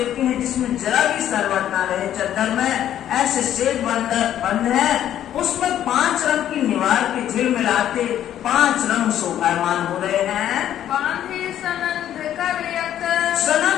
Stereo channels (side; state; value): right; quieter; 11.2 dB